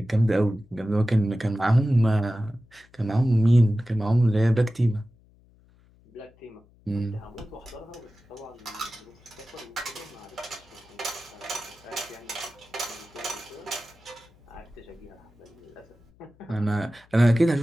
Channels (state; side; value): noise; left; hum, 30 dB below the sound